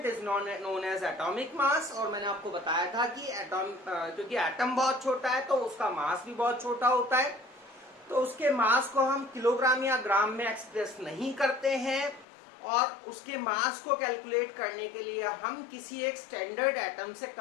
is known as atomic mass और मैंने आपको बताया था कि एटॉम क्योंकि एटम बहुत छोटा है तो उसका मास भी बहुत छोटा होता है तो उसके मास को हम किलोग्राम या ग्राम में एक्सप्रेस नहीं करते हैं और उसके मास को कैलकुलेट करने के लिए हम किसी एक स्टैंडर्ड एटम से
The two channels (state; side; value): drops out; right; at 12.2 s